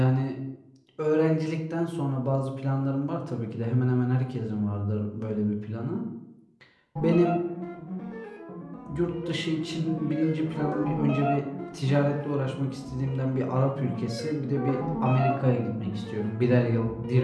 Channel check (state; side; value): identical; both; correlation 1.00